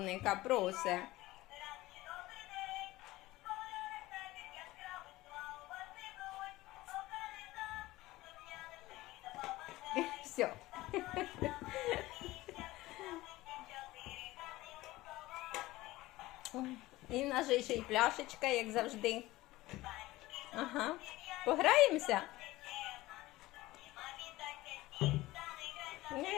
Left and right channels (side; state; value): right; quieter; 18.2 dB